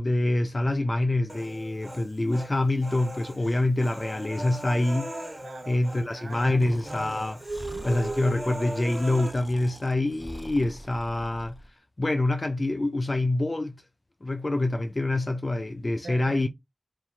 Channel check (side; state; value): both; normal; correlation 0.97